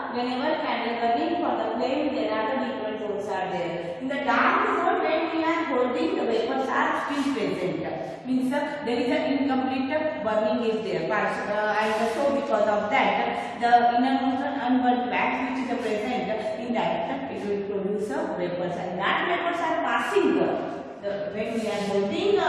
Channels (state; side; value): identical; both; correlation 1.00